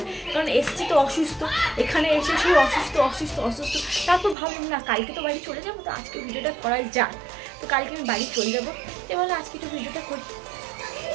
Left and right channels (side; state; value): left; drops out; at 4.4 s